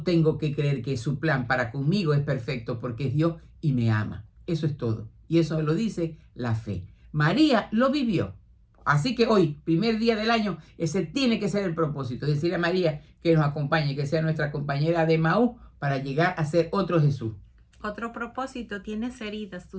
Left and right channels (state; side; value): identical; both; correlation 1.00